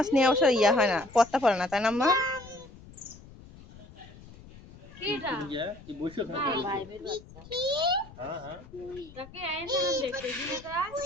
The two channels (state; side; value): noise; left; rumble, 20 dB below the sound